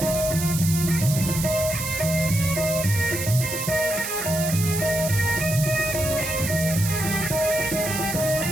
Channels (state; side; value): noise; right; hiss, 5 dB below the sound